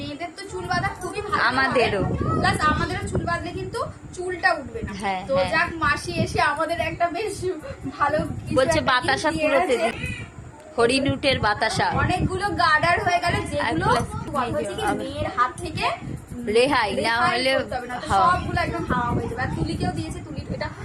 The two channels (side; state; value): both; identical; correlation 1.00